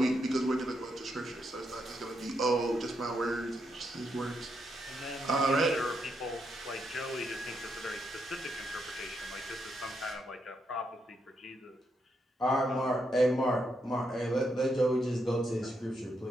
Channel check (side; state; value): both; normal; correlation 0.80